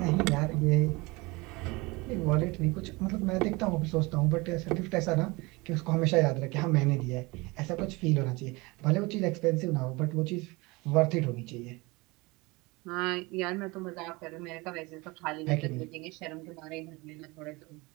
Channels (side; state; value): left; quieter; 24.3 dB